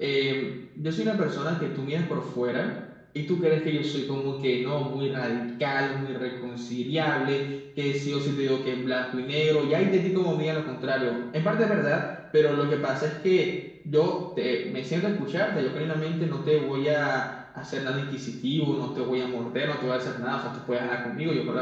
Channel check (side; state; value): both; identical; correlation 1.00